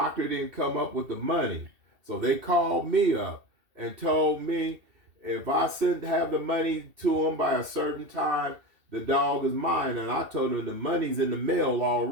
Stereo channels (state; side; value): late; left; 2.7 ms